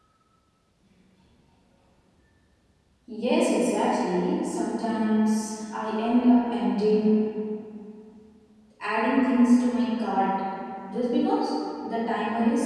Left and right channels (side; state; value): both; identical; correlation 1.00